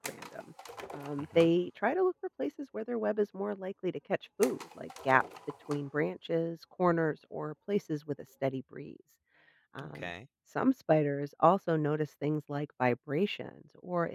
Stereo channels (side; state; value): both; identical; correlation 1.00